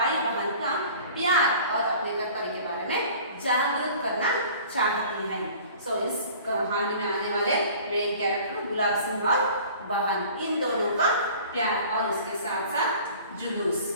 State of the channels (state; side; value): inverted; both; correlation -0.46